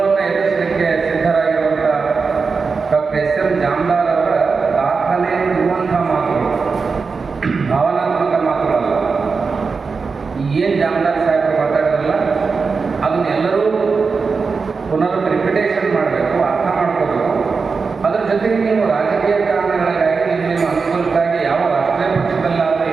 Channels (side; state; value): left; quieter; 4.8 dB